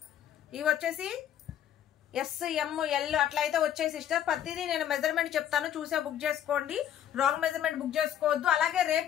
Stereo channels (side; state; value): right; quieter; 10.4 dB